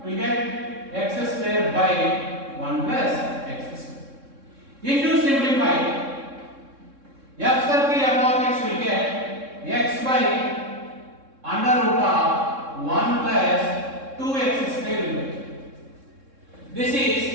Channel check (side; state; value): left; late; 3.6 ms